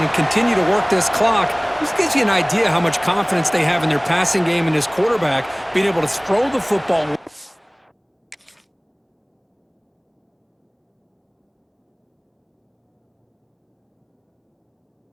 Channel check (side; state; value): both; identical; correlation 1.00